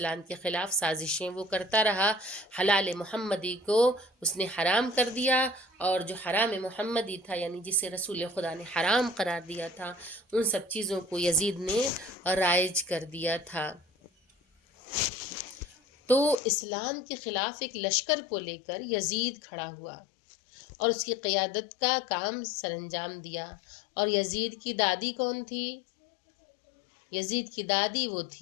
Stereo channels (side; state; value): right; drops out; at 16.4 s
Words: کے خلاف سازشیں وہ کرتا رہا، حلال محمدی کو اس نے حرام کر دیا، اور جو حرام محمدی تھا یعنی جسے رسول خدا نے حرام قرار دیا تھا، ان سب چیزوں کو یزید نے رائج کر دیا تھا۔ تو اسلام کے خلاف ایک لشکر کو لے کر یزید کھڑا ہوا اور اس کی قیادت کا کام سر انجام دیا۔ اور یزید کی دادی کون تھی؟ یزید کی دادی وہ